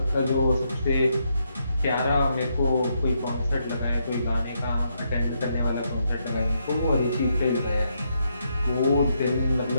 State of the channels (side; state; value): both; inverted; correlation -0.78